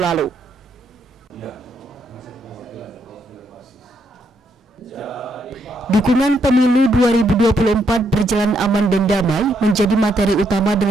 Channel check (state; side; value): normal; both; correlation 0.76